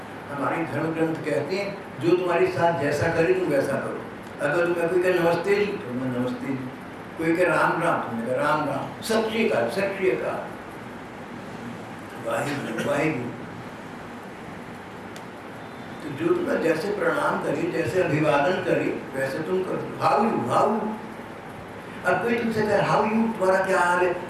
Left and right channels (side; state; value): both; identical; correlation 1.00